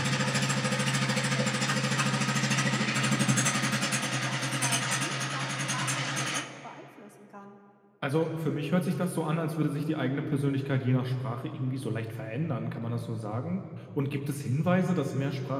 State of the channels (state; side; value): identical; both; correlation 1.00